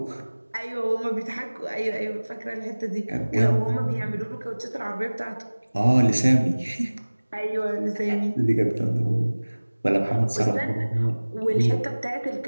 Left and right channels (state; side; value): inverted; both; correlation -1.00